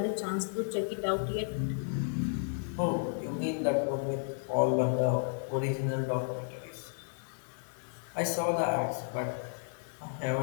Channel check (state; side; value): silent; right; 56 dB below the other